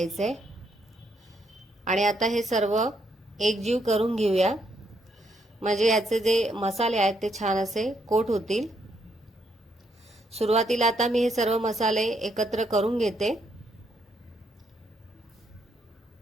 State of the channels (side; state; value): both; normal; correlation 0.75